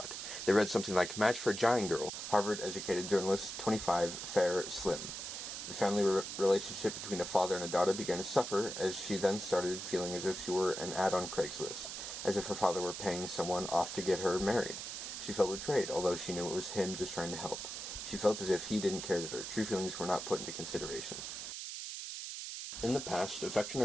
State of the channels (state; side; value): noise; right; hiss, 7 dB below the sound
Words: They read something like, "Match for Giant Girl, Harvard-educated journalist, 25, fair, slim." The family relationship between a father and a daughter began to suffer as she then started feeling as if she were an ad on Craigslist, as if her father were paying someone off to get her married. She felt betrayed, although she knew it was him just trying to help. She felt as if he didn't care that her true feelings were not put into consideration. In the past, affection